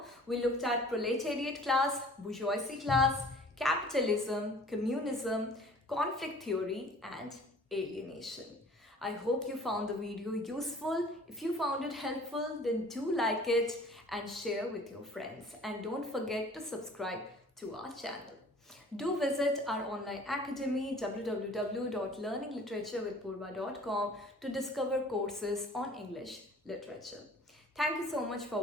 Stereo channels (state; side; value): normal; both; correlation 0.49